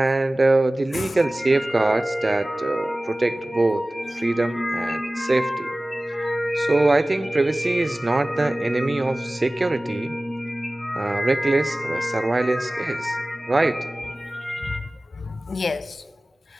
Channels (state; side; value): normal; both; correlation 0.98